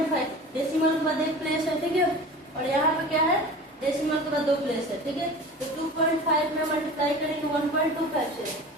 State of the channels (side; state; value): both; normal; correlation 0.37